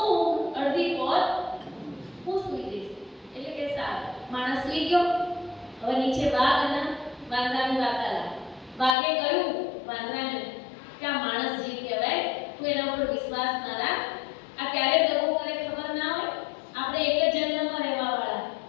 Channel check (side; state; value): right; drops out; at 9.0 s